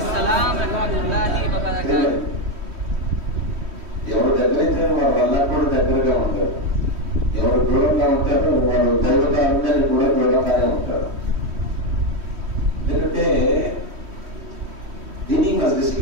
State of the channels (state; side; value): late; left; 3.1 ms